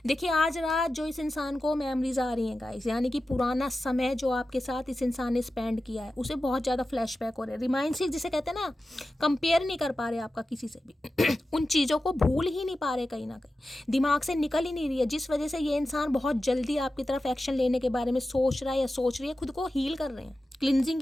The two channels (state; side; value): normal; both; correlation 0.93